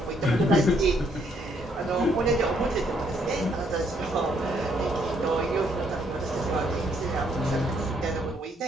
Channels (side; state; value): both; normal; correlation 0.70